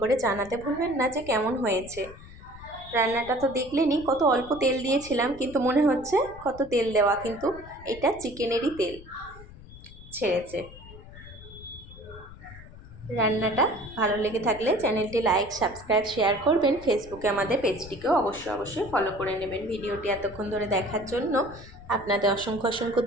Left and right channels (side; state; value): left; noise; rumble, 17 dB below the sound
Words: করে জানাতে ভুলবেন না যে কেমন হয়েছে। রান্নাটা তো দেখলেনই, কত অল্প তেল দিয়েছিলাম, কিন্তু মনে হচ্ছে কত তেল দেওয়া, কিন্তু এটা চিকেনেরই তেল ছেড়েছে। রান্নাটা ভালো লেগে থাকলে চ্যানেলটি লাইক, সাবস্ক্রাইব, শেয়ার করবেন। ফেসবুকে আমাদের পেজটিকেও অবশ্যই ফলো করে নেবেন। ভিডিওটি এতক্ষণ ধরে দেখার জন্য আপনাদের অসংখ্য